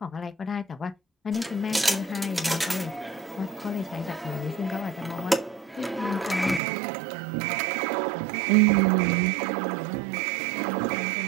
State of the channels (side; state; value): left; drops out; at 6.6 s